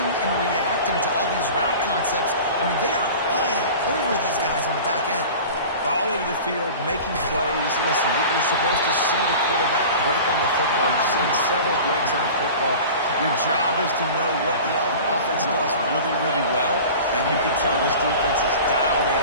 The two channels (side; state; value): both; inverted; correlation -0.37